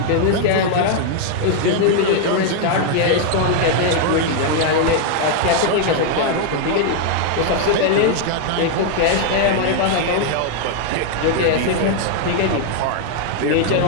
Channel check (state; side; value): different; both; correlation 0.00